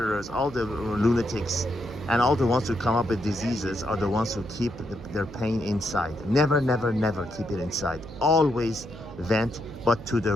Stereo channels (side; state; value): right; noise; hum, 15 dB below the sound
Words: all the lunatics, and all the ones who come up with diseases are the ones who keep their pain inside. Never keep it inside. Always vent, but to the